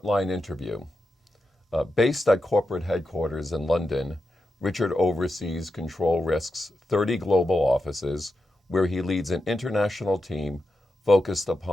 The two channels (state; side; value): normal; both; correlation 0.88